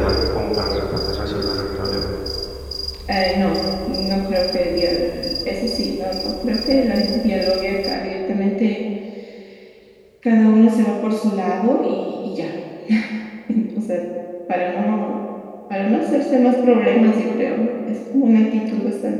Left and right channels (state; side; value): identical; both; correlation 1.00